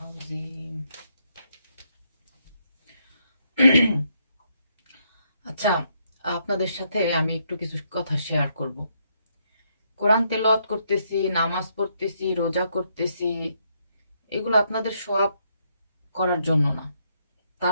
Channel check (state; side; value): inverted; both; correlation -0.75